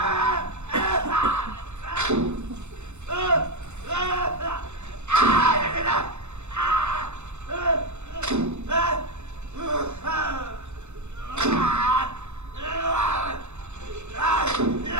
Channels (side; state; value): left; late; 0.82 ms